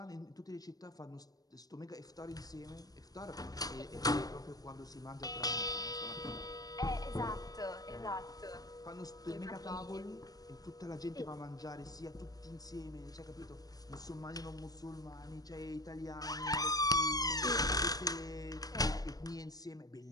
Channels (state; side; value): late; right; 0.18 ms